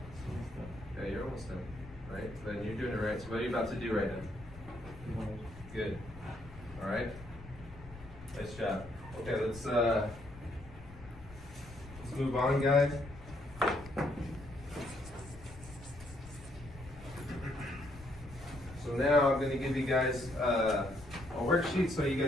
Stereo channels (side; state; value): left; noise; rumble, 17 dB below the sound